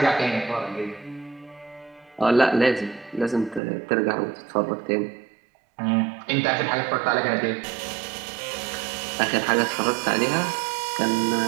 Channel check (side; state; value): left; drops out; at 3.6 s